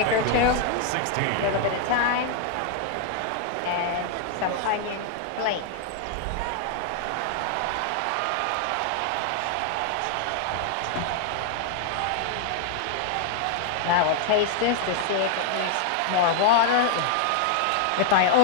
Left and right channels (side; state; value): both; different; correlation 0.00